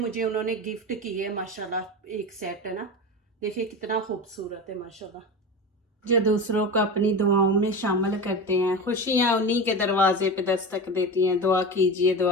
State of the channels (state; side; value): normal; both; correlation 0.26